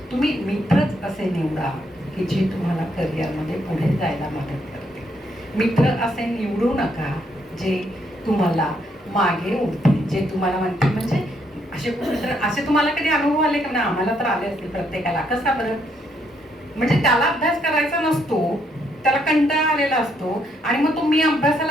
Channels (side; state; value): both; normal; correlation 0.73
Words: तुम्ही मित्रच असे निवडा की जे तुम्हाला करिअरमध्ये पुढे जायला मदत करते. मित्र असे निवडू नका जे तुम्हाला मागे उडतील, जे तुम्हाला म्हणतील. म्हणजे असे तुम्हाला कधी अनुभव आले का? ना आम्हाला तर आले असतील प्रत्येकाला. कसा बरं? म्हणजे त्याला अभ्यास करायचा नसतो, त्याला कंटाळा आलेला असतो आणि मग तो मी